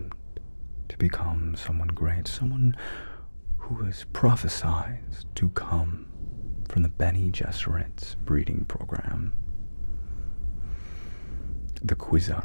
to become someone great, someone who was prophesied to come from the Bene Gesserit's breeding program. The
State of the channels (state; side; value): inverted; both; correlation -1.00